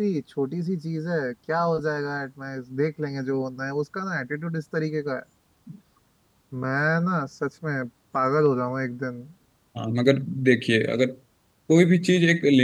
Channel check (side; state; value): both; identical; correlation 1.00